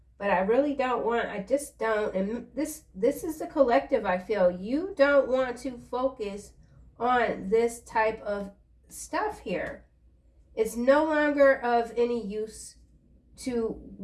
But I really don't want, I just don't, and this is the collective, I feel. You don't want to focus on this type of stuff here. It's no longer of any use to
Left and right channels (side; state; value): both; identical; correlation 1.00